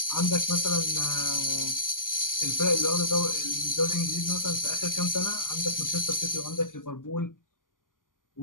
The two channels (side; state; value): right; late; 0.89 ms